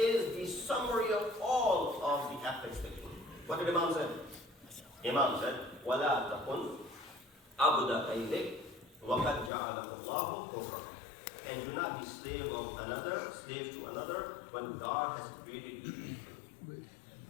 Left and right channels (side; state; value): right; drops out; at 9.5 s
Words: the summary of all of the ethics that you need. What did Imam say? Imam said, وَلَا تَكُنْ عَبْدَ غَيْرِكَ وَقَدْ جَعَلَكَ اللَّهُ حُرًّا. And do not be slave to another, when God has created you to be free.